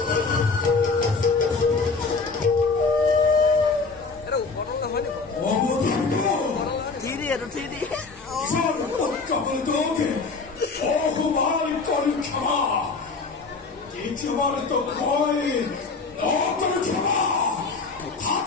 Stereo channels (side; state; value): right; quieter; 4.3 dB